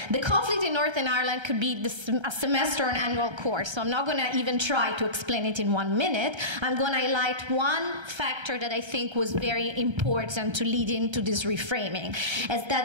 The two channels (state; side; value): late; left; 1.3 ms